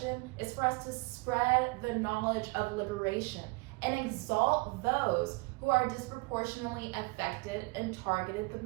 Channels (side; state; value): left; quieter; 28.0 dB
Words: is for us to spread the knowledge of liberation and exalt those who are disproportionately affected and targeted the